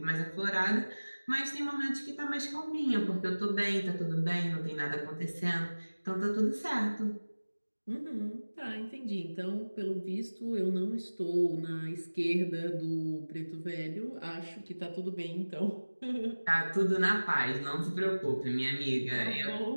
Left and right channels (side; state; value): both; inverted; correlation -1.00